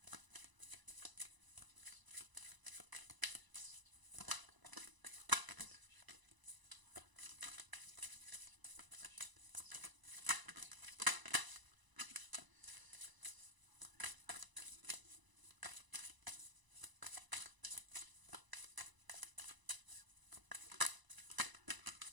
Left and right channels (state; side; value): late; left; 1.0 ms